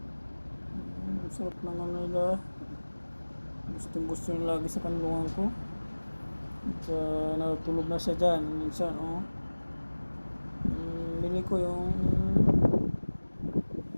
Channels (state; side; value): inverted; both; correlation -1.00